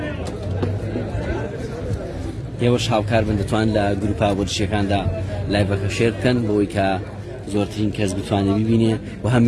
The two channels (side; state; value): both; identical; correlation 1.00